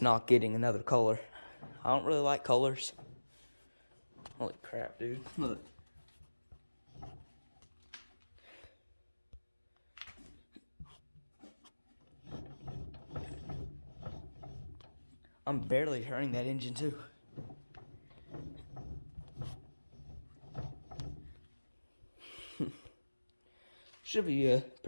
not getting another color. I don't really like colors. Holy crap, dude. Look. I'm barely turning that engine too. Should be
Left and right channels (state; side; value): inverted; both; correlation -1.00